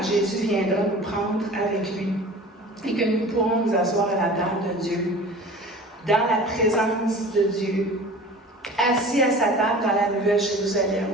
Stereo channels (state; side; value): normal; both; correlation 0.41